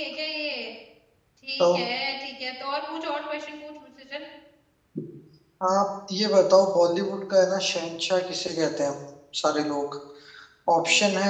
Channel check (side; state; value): both; identical; correlation 1.00